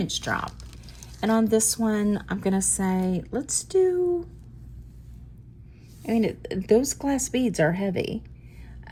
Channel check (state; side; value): identical; both; correlation 1.00